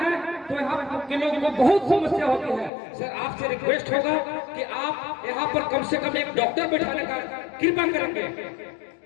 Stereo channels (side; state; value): right; drops out; at 2.7 s